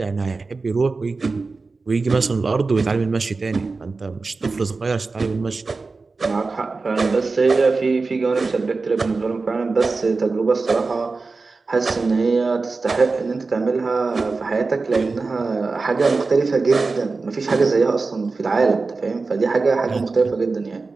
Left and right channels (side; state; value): left; quieter; 4.0 dB